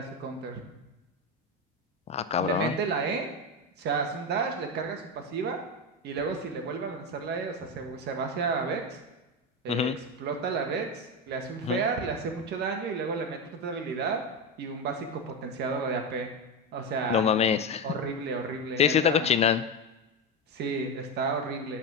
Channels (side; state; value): both; normal; correlation 0.14